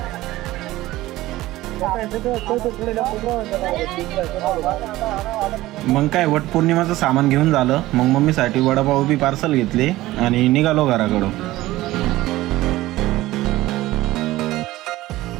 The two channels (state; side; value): quieter; left; 17.0 dB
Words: मग काय, वट पौर्णिमाचं सामान घेऊन झालं, मग मम्मीसाठी वडापाव बी पार्सल घेतले आणि निघालो घराकडं.